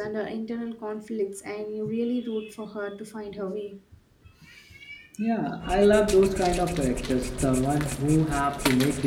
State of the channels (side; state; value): both; identical; correlation 1.00